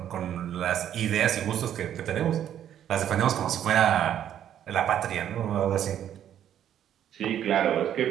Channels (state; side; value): quieter; left; 10.4 dB